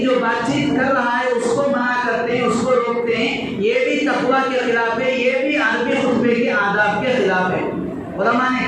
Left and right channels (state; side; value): identical; both; correlation 1.00